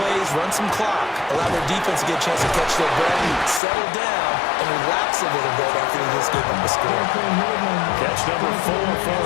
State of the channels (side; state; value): right; drops out; at 3.6 s